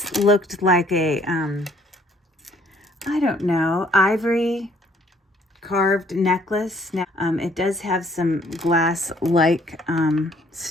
looked like a, I don't know, ivory carved necklace. Now, it does have some glass-like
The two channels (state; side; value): normal; both; correlation 0.62